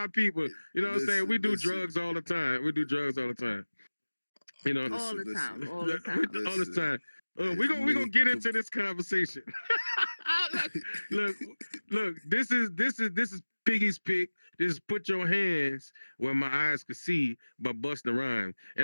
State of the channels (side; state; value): both; inverted; correlation -1.00